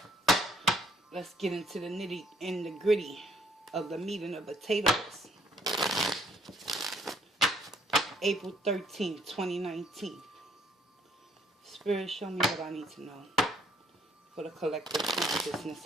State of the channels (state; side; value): normal; both; correlation 0.65